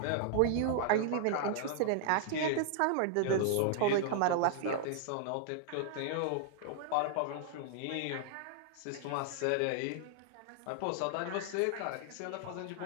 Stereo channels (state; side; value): different; both; correlation 0.00